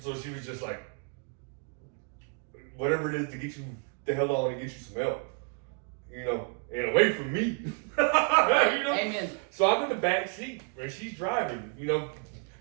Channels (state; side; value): quieter; left; 38.4 dB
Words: she was just like, whatever it is to get you the hell on and get you some help, you know, and away from me. You know? Amen. So I'm in the back seat and she's driving, you know,